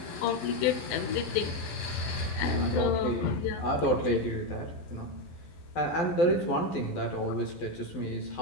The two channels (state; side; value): late; right; 12 ms